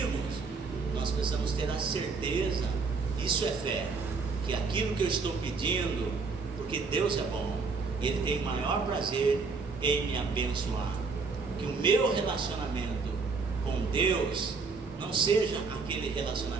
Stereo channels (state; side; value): quieter; left; 4.5 dB